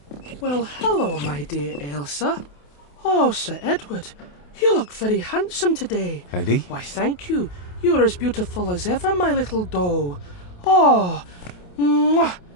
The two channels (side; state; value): right; late; 28 ms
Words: Well, hello, my dear Elsa. Oh, Sir Edward, you look very handsome today. Eddie? Why, thank you. You are as beautiful as ever, my little doe. Oh, mwah,